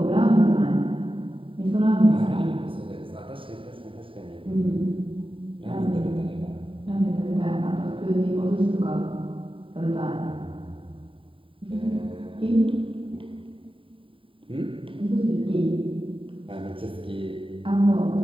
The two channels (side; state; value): left; late; 0.25 ms